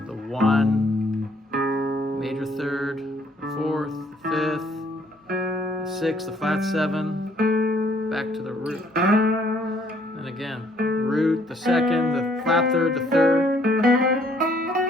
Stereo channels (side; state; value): both; normal; correlation 0.64